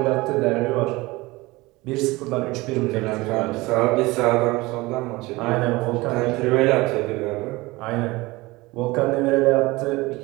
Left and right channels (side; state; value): left; quieter; 21.5 dB